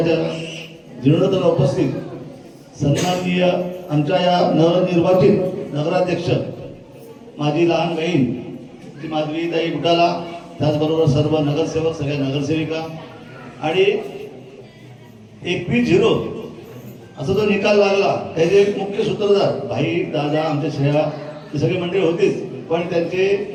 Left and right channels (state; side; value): identical; both; correlation 1.00